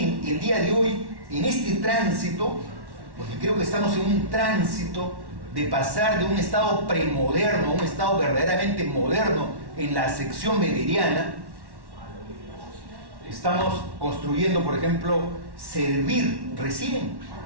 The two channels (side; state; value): left; late; 1.1 ms